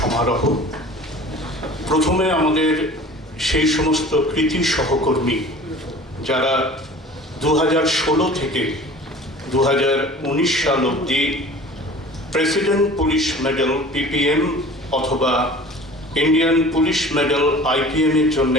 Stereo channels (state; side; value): normal; both; correlation 0.43